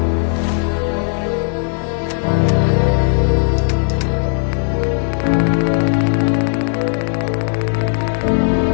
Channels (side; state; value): right; silent; 57 dB below the other